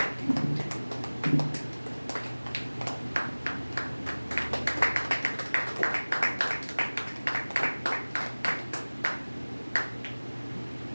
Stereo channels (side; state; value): both; inverted; correlation -1.00